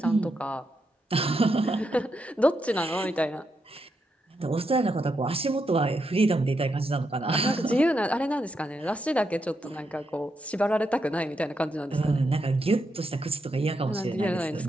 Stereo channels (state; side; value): normal; both; correlation 0.83